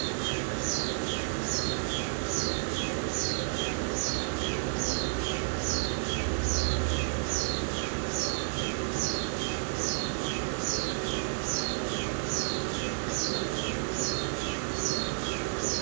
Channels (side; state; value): left; silent; digital silence